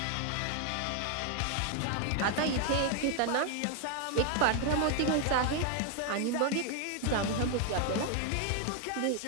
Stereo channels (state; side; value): different; both; correlation 0.00